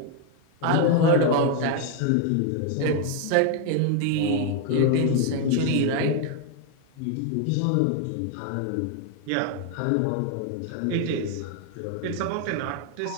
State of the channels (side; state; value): both; different; correlation 0.01